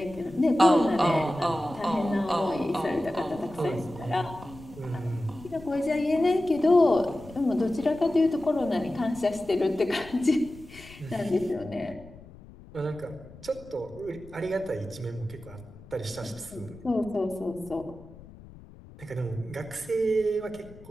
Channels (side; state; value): left; noise; rumble, 19 dB below the sound